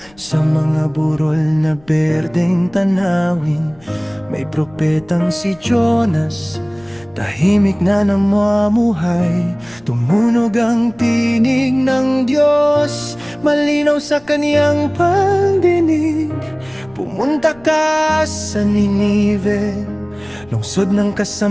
sa mga burol na berdeng tanawin, may propetang si Jonas, tahimik na namumuhay. Tumunog ang tinig ng Diyos, malinaw sa kaniyang pagdinig. Pumunta ka sa Ninive, lungsod ng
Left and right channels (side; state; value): left; noise; rumble, 27 dB below the sound